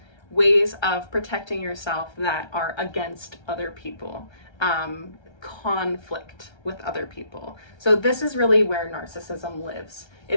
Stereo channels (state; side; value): late; right; 1.3 ms